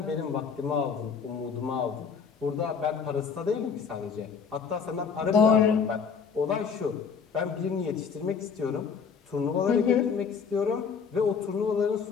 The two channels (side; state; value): right; quieter; 6.1 dB